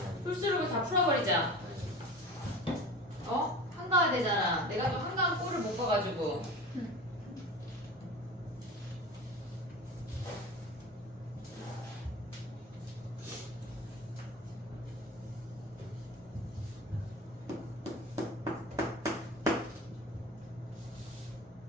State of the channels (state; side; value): normal; both; correlation 0.35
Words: 풀스루를 다 풀어버리자. 어? 한가해야 되잖아. 내가 또 한가한 꼴을 못 봐가지고.